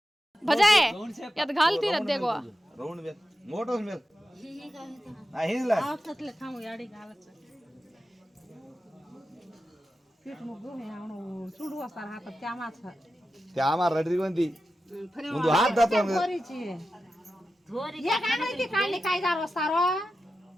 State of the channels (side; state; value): both; normal; correlation 0.91